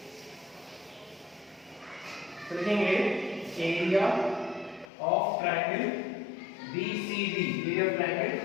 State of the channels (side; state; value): right; drops out; at 4.9 s